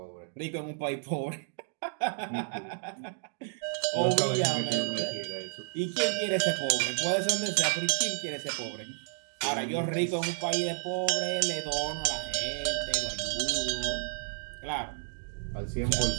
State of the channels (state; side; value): silent; left; digital silence